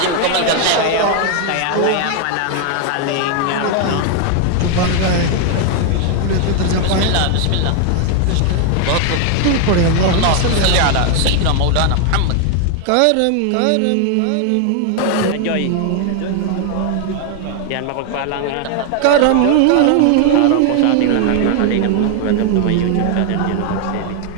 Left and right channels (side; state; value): both; different; correlation 0.00